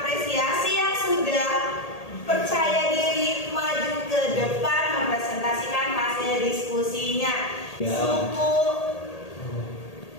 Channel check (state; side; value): late; right; 1.8 ms